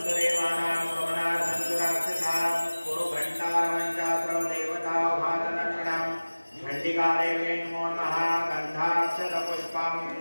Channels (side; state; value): both; inverted; correlation -1.00